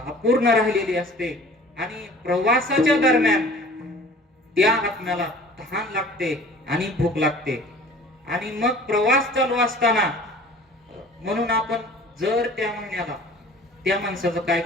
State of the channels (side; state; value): both; normal; correlation 0.46